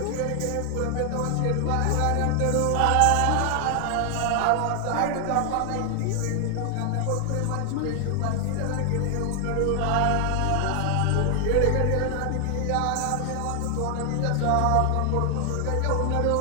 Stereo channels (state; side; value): different; both; correlation 0.00